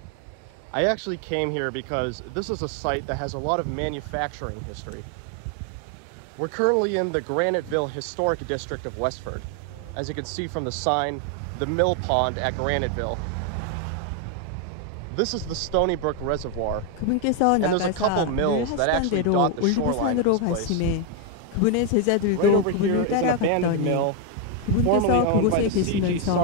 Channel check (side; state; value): both; different; correlation 0.01